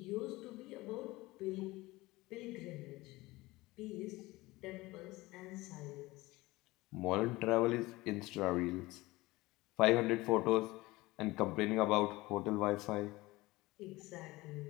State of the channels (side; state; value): right; quieter; 20.3 dB